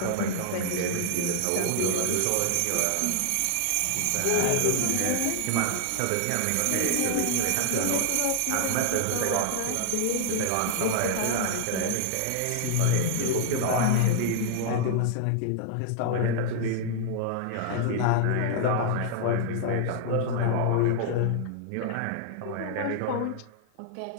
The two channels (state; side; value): different; both; correlation -0.01